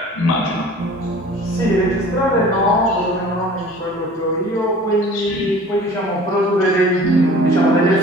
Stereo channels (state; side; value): normal; both; correlation 0.45